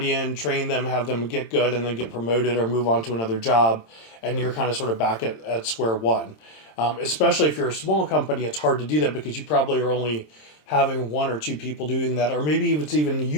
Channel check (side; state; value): right; late; 27 ms